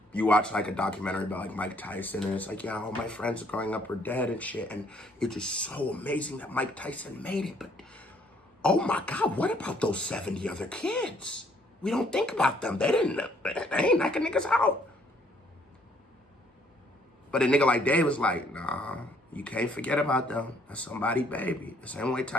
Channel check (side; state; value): both; normal; correlation 0.65